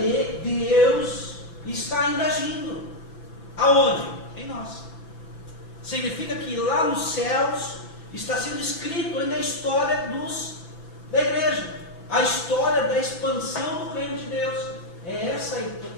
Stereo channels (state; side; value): late; right; 6.0 ms